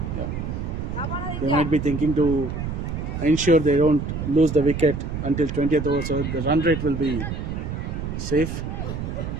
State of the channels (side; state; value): right; noise; rumble, 5 dB below the sound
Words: They might be thinking to ensure they don't lose the wicket until 20th over, so the run rate will be safe.